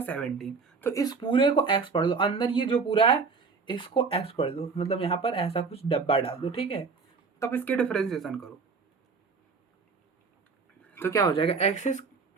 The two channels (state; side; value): quieter; left; 4.9 dB